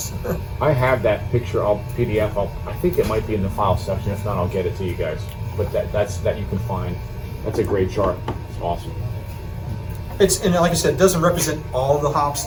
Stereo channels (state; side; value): identical; both; correlation 1.00